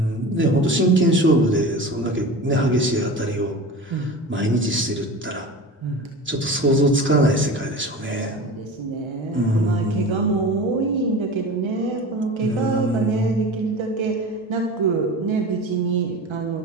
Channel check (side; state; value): both; normal; correlation 0.33